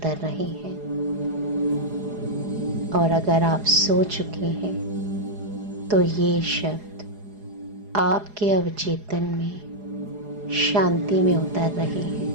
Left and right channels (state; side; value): late; left; 4.8 ms